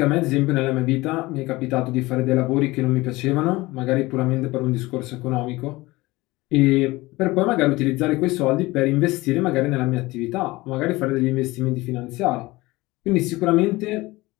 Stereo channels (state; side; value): quieter; right; 20.6 dB